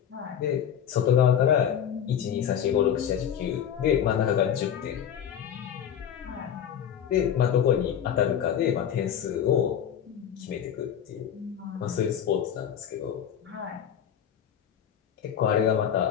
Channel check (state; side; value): quieter; right; 9.1 dB